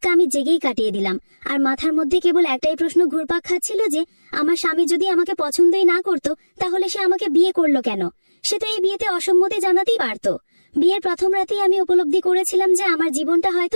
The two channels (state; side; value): inverted; both; correlation -1.00